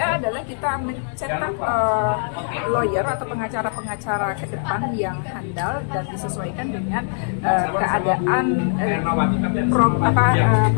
adalah kita mencetak lawyer atau pengacara-pengacara ke depan yang handal dan disesuaikan dengan keadaan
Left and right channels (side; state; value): right; silent; 65 dB below the other